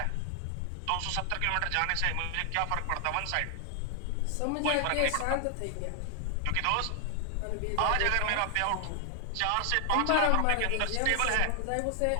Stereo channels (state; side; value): different; both; correlation 0.00